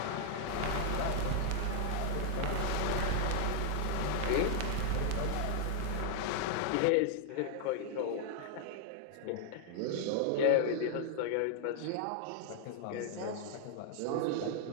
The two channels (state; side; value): different; both; correlation -0.01